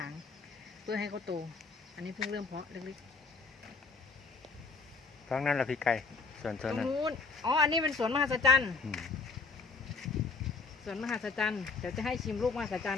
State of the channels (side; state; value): right; quieter; 4.5 dB